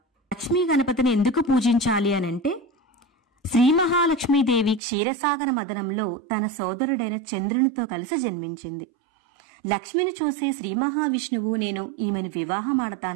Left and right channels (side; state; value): left; drops out; at 4.8 s